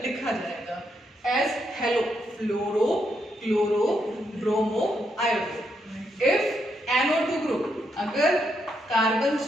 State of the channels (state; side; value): normal; both; correlation 0.79